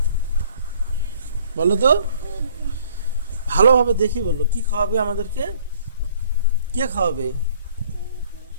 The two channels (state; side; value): inverted; both; correlation -0.58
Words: বলো তো, ভালোভাবে দেখি বলো, কি খাওয়াবে আমাদেরকে? কে খাওয়াবে?